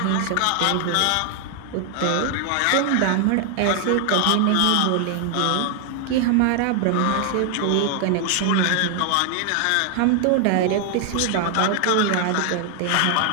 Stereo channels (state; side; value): different; both; correlation 0.00